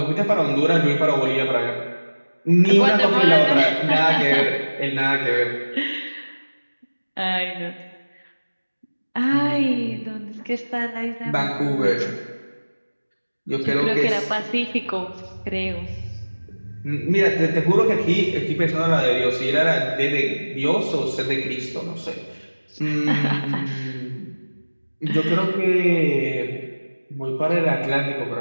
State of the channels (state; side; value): inverted; both; correlation -1.00